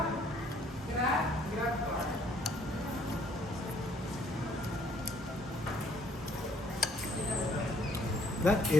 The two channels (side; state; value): both; normal; correlation 0.62